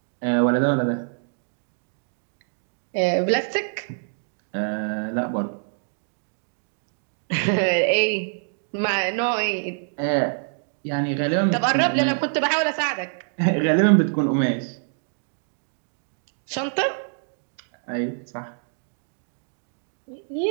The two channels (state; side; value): silent; left; digital silence